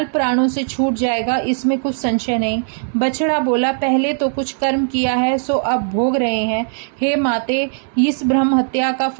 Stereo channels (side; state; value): left; silent; 67 dB below the other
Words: प्राणों से छूट जाएगा, इसमें कुछ संशय नहीं। बछड़ा बोला, पहले तो कुछ कर्म किया है सो अब भोग रहे हैं। हे माते, इस ब्रह्म हत्या का